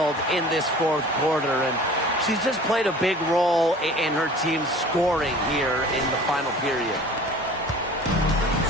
in this fourth quarter, and she's just played a big role in her team's scoring here in the final period.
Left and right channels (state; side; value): normal; both; correlation 0.44